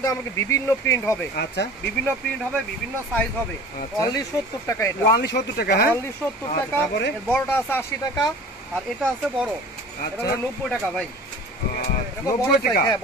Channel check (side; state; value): both; normal; correlation 0.42